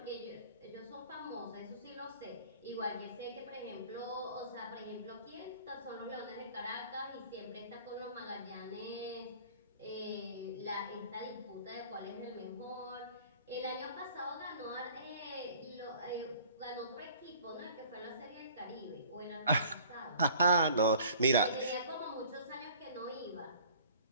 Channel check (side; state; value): both; inverted; correlation -0.51